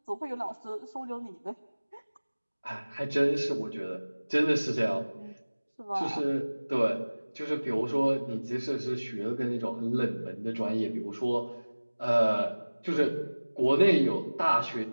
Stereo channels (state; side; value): inverted; both; correlation -1.00